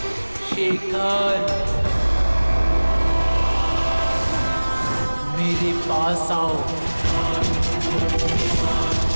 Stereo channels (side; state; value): both; inverted; correlation -1.00